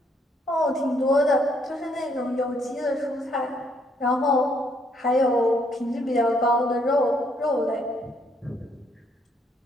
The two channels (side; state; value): both; normal; correlation 0.70